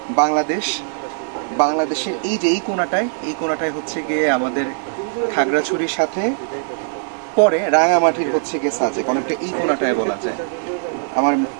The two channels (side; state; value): left; silent; digital silence